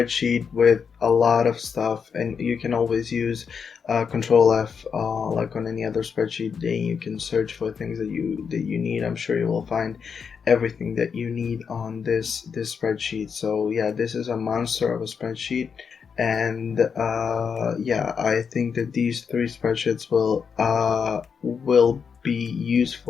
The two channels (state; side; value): quieter; right; 6.3 dB